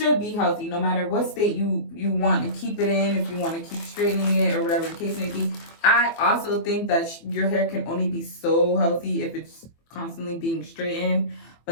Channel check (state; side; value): late; right; 24 ms